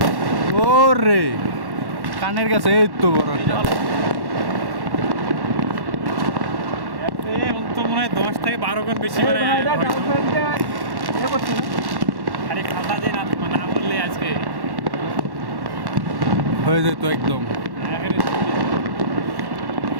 ওরে কানের কাছে এই তো বড় একটা। তো মনে হয় 10 থেকে 12 গুণ বেশি মানে আরে খাতা দিয়ে না বললে আজকে হয়ে যেত একদম।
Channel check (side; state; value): left; late; 1.1 ms